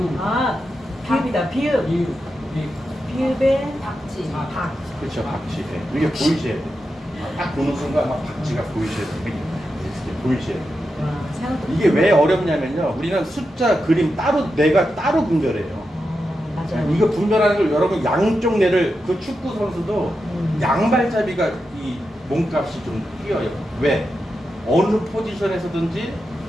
비읍이다. 비읍. 비읍의 박지. 박. 그렇죠. 박쥐. 이게 보이셔야 돼. 딱 보는 순간 막 박쥐가 보이셔야 돼. 이렇게 보이셔야 돼. 이게 왜 어렵냐면요. 우리는 숫자, 그림 내가 따로 분별해요. 맞아요. 이거 분별하는 걸 여러분 양쪽 뇌를 그 축구 선수도 양발잡이가 이 몸값이 좀 뛰어요. 왜? 어느 포지션에서든지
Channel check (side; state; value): both; normal; correlation 0.88